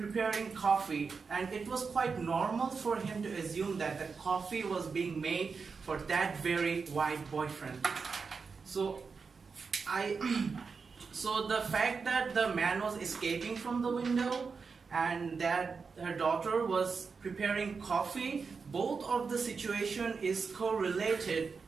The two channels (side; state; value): left; quieter; 5.1 dB